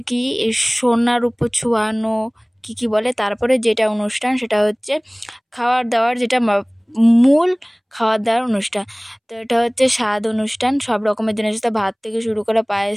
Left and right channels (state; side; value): identical; both; correlation 1.00